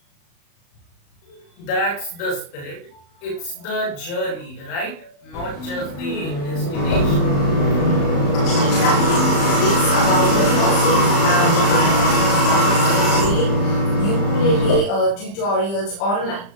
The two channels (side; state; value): right; late; 35 ms